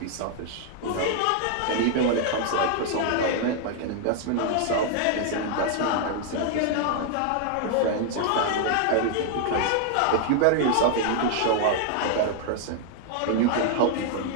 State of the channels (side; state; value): both; different; correlation 0.00